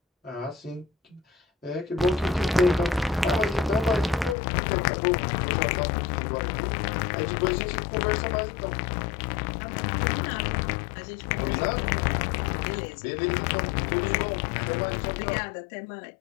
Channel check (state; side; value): drops out; right; at 4.4 s